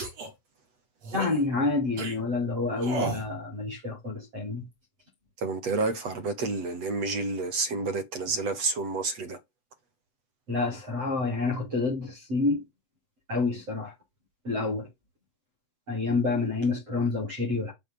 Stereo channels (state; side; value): late; left; 8.2 ms